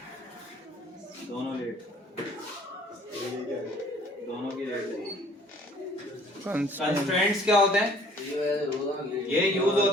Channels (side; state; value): both; normal; correlation 0.56